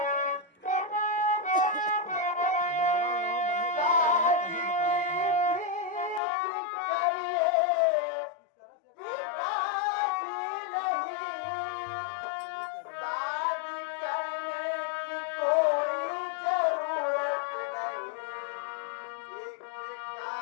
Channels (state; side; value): drops out; right; at 6.2 s